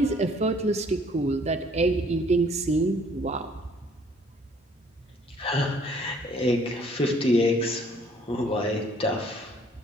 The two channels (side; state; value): both; normal; correlation 0.59